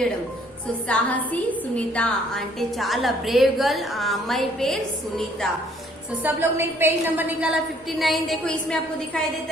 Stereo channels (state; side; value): normal; both; correlation 0.62